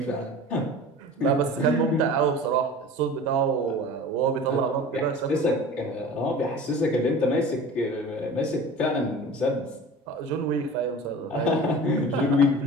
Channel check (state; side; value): normal; both; correlation 0.38